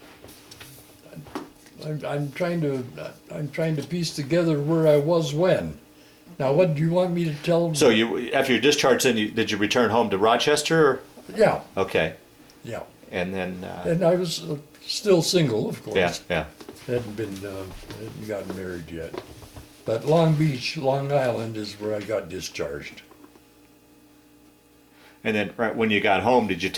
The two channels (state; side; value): identical; both; correlation 1.00